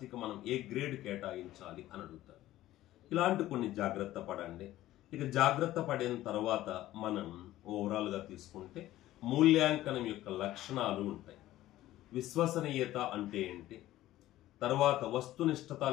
మనం ఏ గ్రేడ్ కేటాయించాలి అని అడుగుతారు. ఇలాంటి కొన్ని జాగ్రత్త పడండి. ఇక జాగ్రత్త పడిన తర్వాత మనం ఓవరాల్గా తీసుకుంటే మూల్యాంకనం యొక్క లక్షణాలు ఉంటాయి. విశ్వసనీయత అంటే ఏంటి, తర్వాత వస్తునిష్టత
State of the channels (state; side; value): quieter; right; 14.9 dB